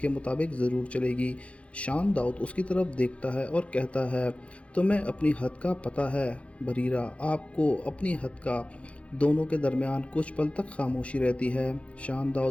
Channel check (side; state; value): right; late; 0.062 ms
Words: मुताबिक ज़रूर चलेगी। शान दाऊद उसकी तरफ देखता है और कहता है, तुम्हें अपनी हद का पता है बरीरा, आपको अपनी हद का। दोनों के दरमियान कुछ पल तक खामोशी रहती है। शान